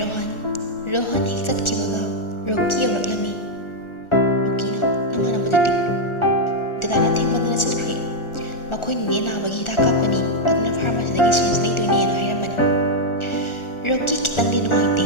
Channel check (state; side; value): late; right; 1.4 ms